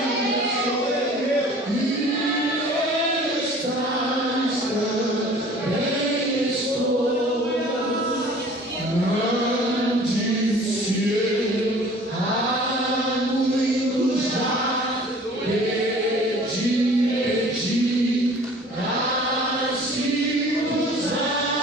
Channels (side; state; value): both; normal; correlation 0.48